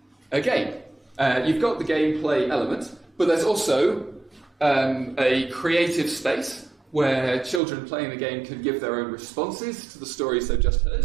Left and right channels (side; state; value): left; drops out; at 7.6 s